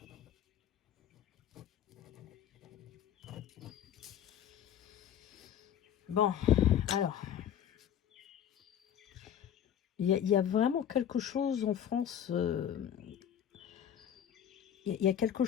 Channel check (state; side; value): quieter; right; 9.7 dB